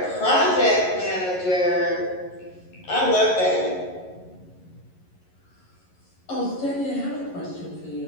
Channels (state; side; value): late; right; 11 ms